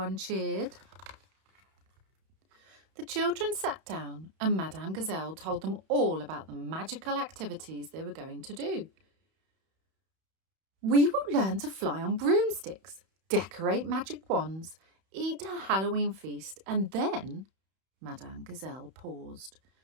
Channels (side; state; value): left; late; 31 ms